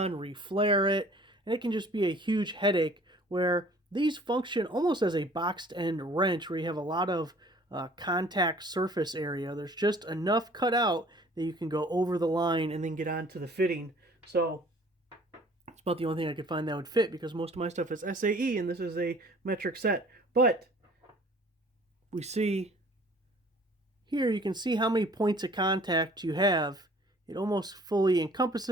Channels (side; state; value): both; normal; correlation 0.53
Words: reflare it, and it can just be a huge headache, where these function almost as a boxed end wrench where you have a lot of contact surface area. There's just enough cut out that you can go over the line and then get onto the fitting. So it's about the only thing I could find that would fit, because most of my stuff is SAE and this is a metric set. But we see here, you can see how many points of contact you have. It almost fully